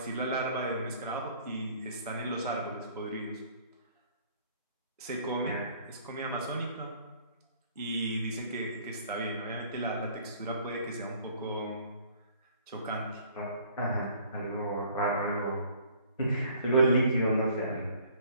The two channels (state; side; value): inverted; both; correlation -0.56